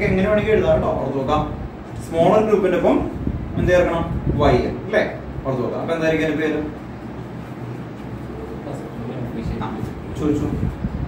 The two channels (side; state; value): both; identical; correlation 1.00